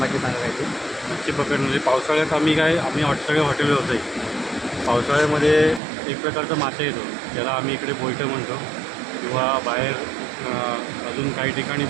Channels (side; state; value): left; drops out; at 5.8 s